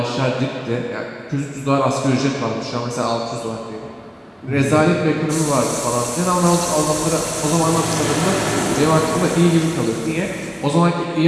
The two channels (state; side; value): identical; both; correlation 1.00